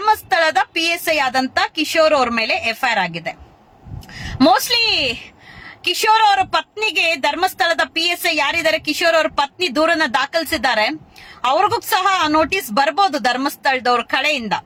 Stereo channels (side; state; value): both; identical; correlation 1.00